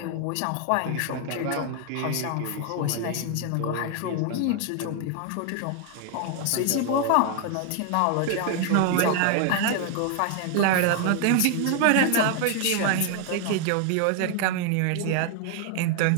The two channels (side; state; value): both; different; correlation 0.00